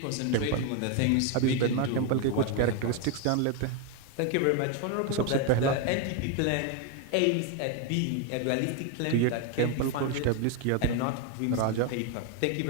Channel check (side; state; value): both; different; correlation 0.01